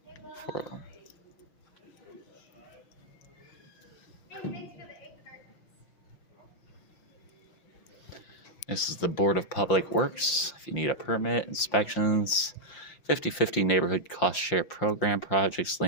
This is the Board of Public Works. If you need a permit, inspections, 50/50 neighborhood cost share program projects,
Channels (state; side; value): late; right; 5.7 ms